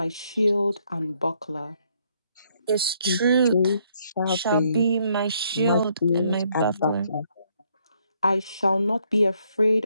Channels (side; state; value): both; inverted; correlation -0.71